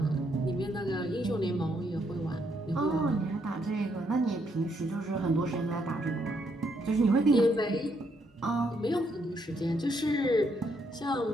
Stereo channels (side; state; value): both; normal; correlation 0.74